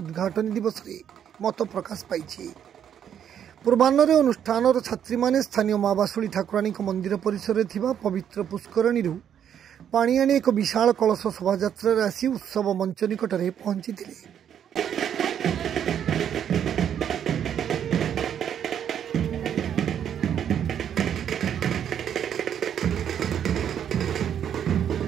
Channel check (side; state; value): left; quieter; 9.1 dB